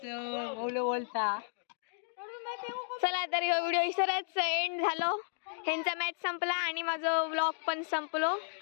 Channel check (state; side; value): silent; right; digital silence